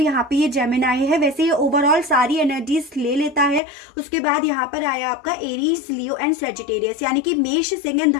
पे ये जेमिनाई है। वैसे ये ओवरऑल सारी एनर्जीज ले लेता है। उसके बाद यहाँ पर आया आपका एरीज, लियो एंड सेजिटेरियस, यानी कि मेष, सिंह एंड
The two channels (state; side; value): drops out; right; at 3.6 s